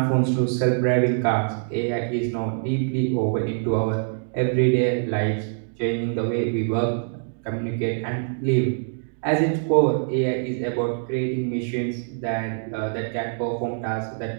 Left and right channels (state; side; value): silent; left; digital silence